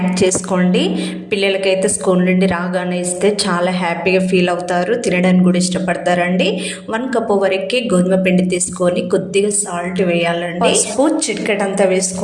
చేసుకోండి. పిల్లలకైతే స్కూల్ నుండి రాగానే ఇస్తే చాలా హ్యాపీగా ఫీల్ అవుతారు, తినడానికి కూడా ఇష్టపడతారండి. 1 కప్పు వరకు గోధుమ పిండి తీసుకొని కొద్దిగా సాల్ట్ వేయాలండి. పసుపు చిటికెడంతా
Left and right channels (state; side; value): identical; both; correlation 1.00